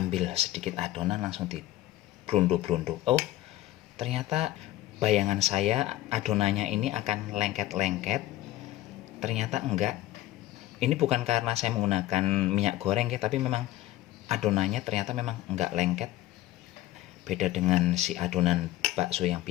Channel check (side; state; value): right; quieter; 15.5 dB